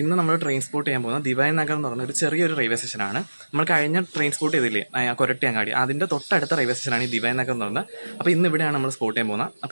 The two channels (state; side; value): inverted; both; correlation -1.00